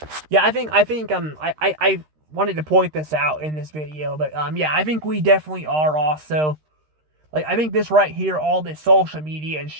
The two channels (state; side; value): late; left; 13 ms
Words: yeah, I wanted to point this out in this video, but yeah, I think we definitely are also, like, I think this right here, all this social media and